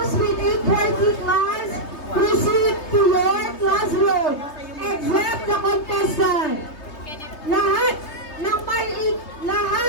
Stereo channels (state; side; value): late; right; 3.2 ms